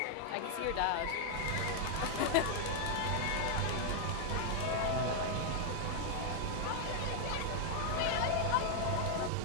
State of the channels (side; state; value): both; different; correlation 0.00